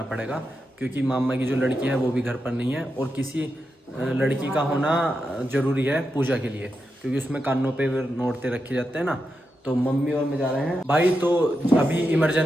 पड़ेगा, क्योंकि मामा की जो लड़की है वो भी घर पर नहीं है और किसी लड़की का होना ज़रूरी है पूजा के लिए, क्योंकि उसमें कानों पे नोटते रखे जाते हैं ना। तो मम्मी और मैं जा रहे हैं भाई। तो अभी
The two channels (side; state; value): both; normal; correlation 0.87